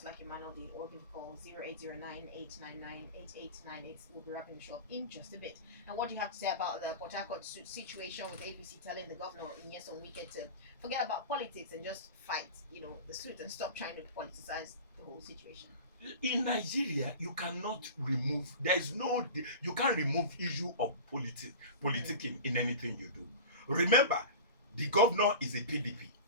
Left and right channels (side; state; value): both; inverted; correlation -0.33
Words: like Emmanuel did, or give a call 0809-899-8898. We'll be wrapping the show up in just a bit. And what do you have to say about the Port Harcourt situation with APC telling the governor in Nyesom Wike to forget about politics and just fight, the suit and stop trying to politicize the whole situation? In Nigeria, you cannot remove. There is no. You can't remove issue of politicking in anything you do. Remember, the governor is a PDP,